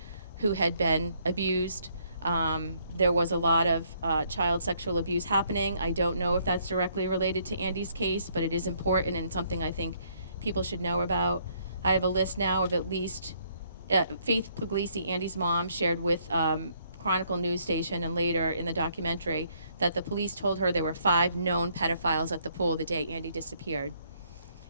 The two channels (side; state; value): both; inverted; correlation -0.68